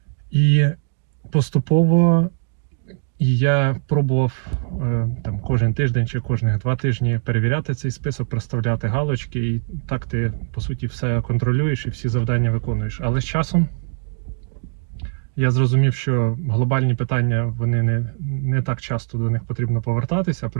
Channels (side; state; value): left; silent; digital silence